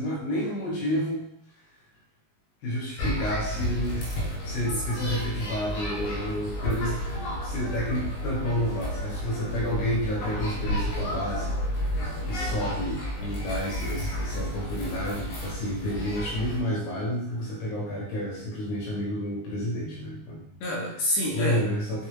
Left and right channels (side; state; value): right; late; 19 ms